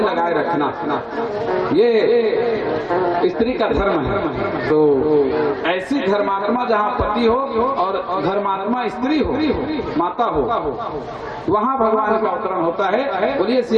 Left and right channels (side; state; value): both; identical; correlation 1.00